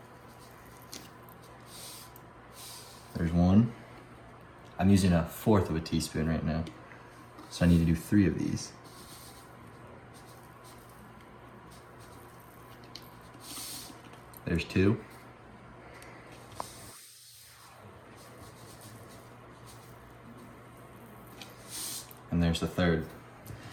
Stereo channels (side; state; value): both; identical; correlation 1.00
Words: There's 1. I'm using 1/4 of a teaspoon right now, so I need to do 3 of these. There's 2. And there's the 3rd.